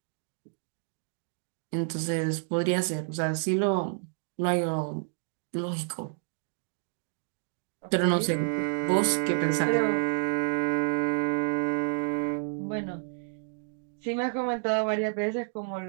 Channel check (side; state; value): left; silent; digital silence